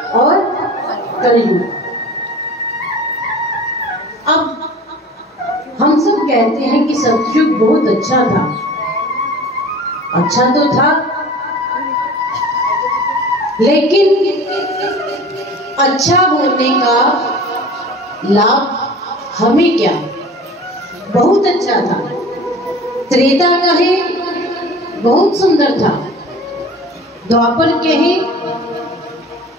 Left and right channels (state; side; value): normal; both; correlation 0.41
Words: और कलयुग। अब हम सब कहते हैं कि सतयुग बहुत अच्छा था। अच्छा तो था, लेकिन अच्छा होने का लाभ हमें क्या? बहुत अच्छा था। त्रेता कहे बहुत सुंदर था, द्वापर कहे